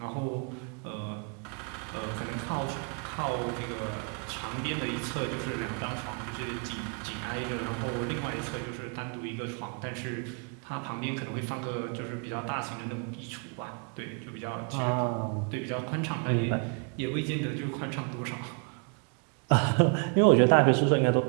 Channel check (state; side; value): quieter; left; 38.3 dB